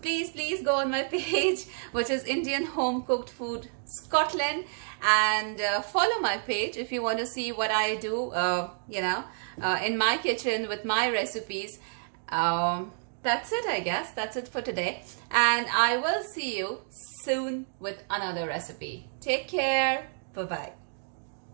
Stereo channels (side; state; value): left; silent; digital silence